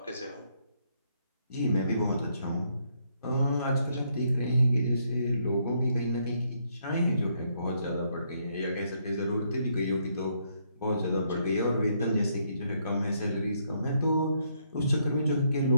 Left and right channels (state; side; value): inverted; both; correlation -0.73